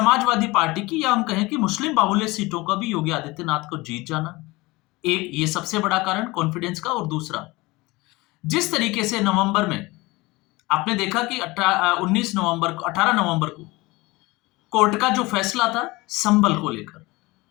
पार्टी की या हम कहें कि मुस्लिम बाहुल्य सीटों का भी योगी आदित्यनाथ को जीत जाना, एक ये सबसे बड़ा कारण कॉन्फिडेंस का। और दूसरा जिस तरीके से नवंबर में आपने देखा कि 18 नवंबर को कोर्ट का जो फैसला था संबल को लेकर,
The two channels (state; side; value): quieter; right; 22.1 dB